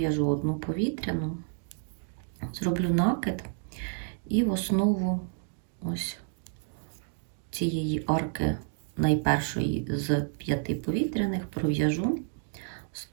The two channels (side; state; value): left; silent; 57 dB below the other